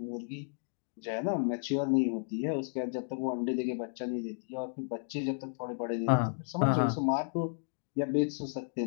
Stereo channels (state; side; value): silent; right; digital silence